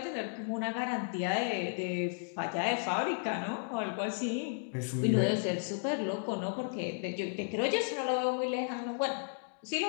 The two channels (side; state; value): right; silent; digital silence